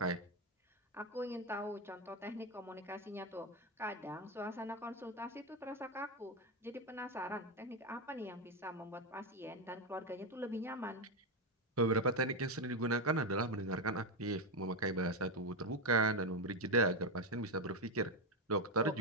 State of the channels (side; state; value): both; normal; correlation 0.08